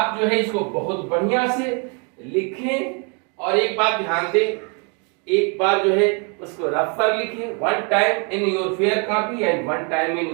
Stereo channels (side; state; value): left; quieter; 35.6 dB